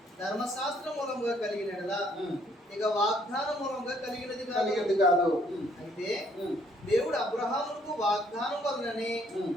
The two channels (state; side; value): normal; both; correlation 0.65